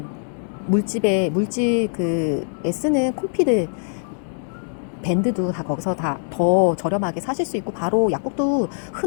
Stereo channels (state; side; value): silent; right; digital silence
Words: 물집 쓰는 콤피드 밴드도 다 거기서 다 더 저렴하게 사실 수 있고, 바로 약국도